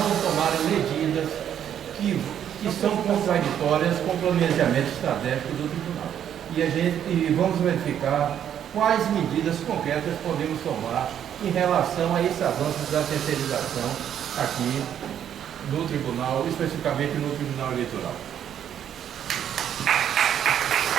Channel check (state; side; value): quieter; left; 9.6 dB